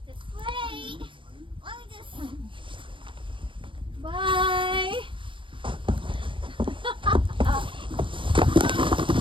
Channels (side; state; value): left; late; 0.25 ms